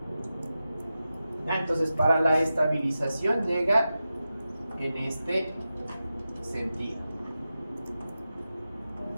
Entonces para la estabilización llega en este sentido.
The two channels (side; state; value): both; inverted; correlation -0.92